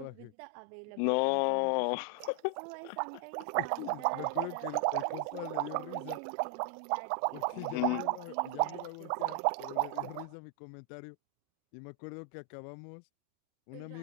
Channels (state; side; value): different; both; correlation 0.00